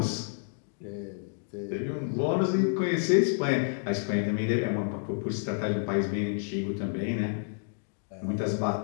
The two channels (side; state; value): right; silent; digital silence